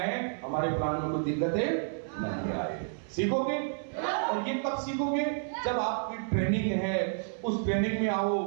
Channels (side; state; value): left; silent; 58 dB below the other